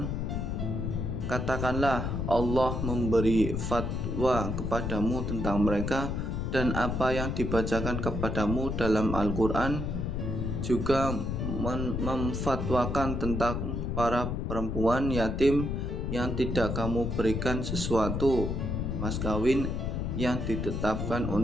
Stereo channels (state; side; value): noise; left; rumble, 2 dB below the sound